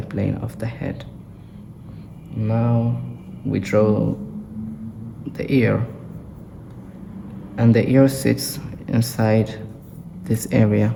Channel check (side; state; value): both; identical; correlation 1.00